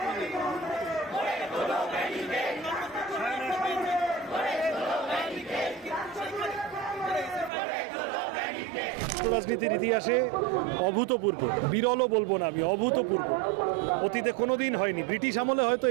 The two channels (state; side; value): drops out; left; at 7.5 s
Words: রাজনীতির ইতিহাসে অভূতপূর্ব, বিরলও বলবো না আমি, অভূতপূর্ব, অতীতে কোনোদিন হয়নি। ব্রিটিশ আমলে হয়তো